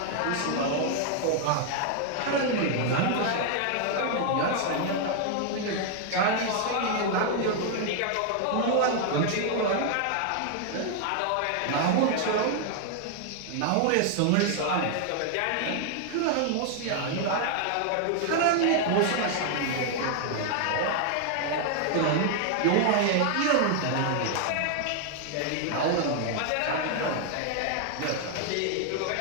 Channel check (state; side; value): different; both; correlation 0.00